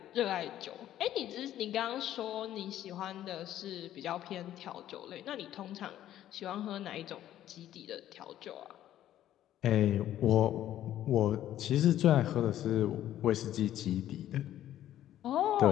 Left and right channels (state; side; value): quieter; right; 12.3 dB